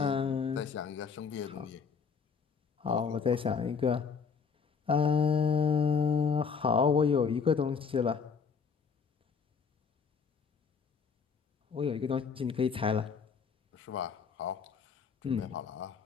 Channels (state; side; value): quieter; right; 5.7 dB